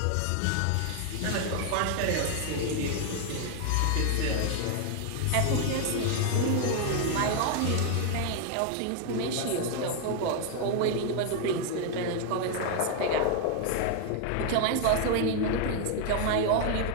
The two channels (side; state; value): both; different; correlation 0.00